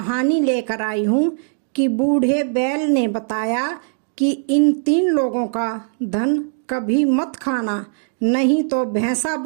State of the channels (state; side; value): silent; left; digital silence